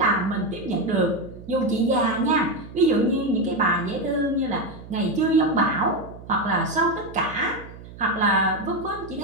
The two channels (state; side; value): noise; right; hum, 16 dB below the sound